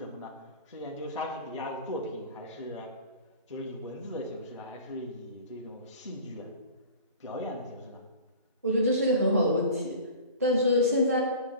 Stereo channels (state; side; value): inverted; both; correlation -0.40